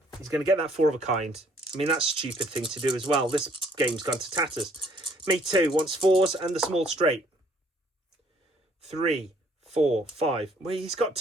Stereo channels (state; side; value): normal; both; correlation 0.62